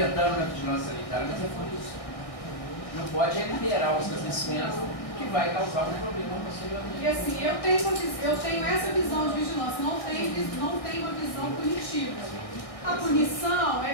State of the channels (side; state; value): right; late; 1.6 ms